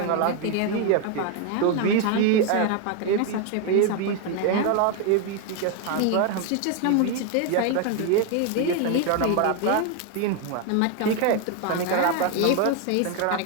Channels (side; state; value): both; different; correlation 0.01